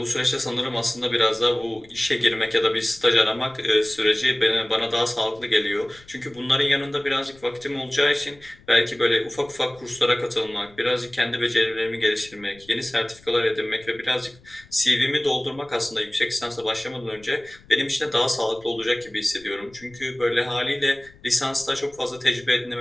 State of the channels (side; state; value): left; noise; rumble, 26 dB below the sound